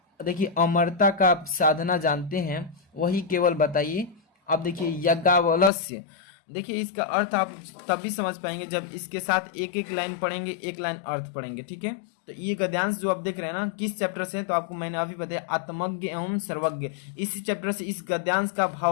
देखिए अमरता का साधना जानते हैं वही केवल बताइए। अब देखिए यज्ञावलस्य, देखिए इसका अर्थ आप तभी समझ पाएंगे जब इसके साथ एक एक लाइन पढ़ेंगे, एक लाइन अर्थ पढ़ेंगे, ठीक है। तो ये गद्यांश जो आप देख रहे हैं ना किस चैप्टर से है, तो आपको मैंने अभी बताया आत्मज्ञ एवं सर्वज्ञ, इसी चैप्टर से इस गद्यांश का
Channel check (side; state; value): right; drops out; at 5.7 s